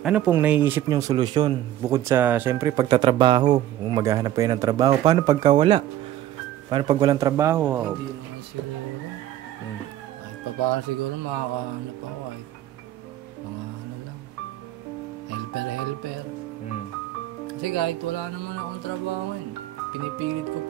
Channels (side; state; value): left; quieter; 12.9 dB